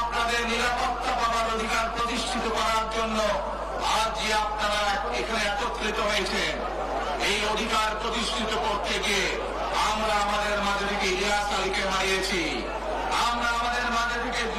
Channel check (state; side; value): identical; both; correlation 1.00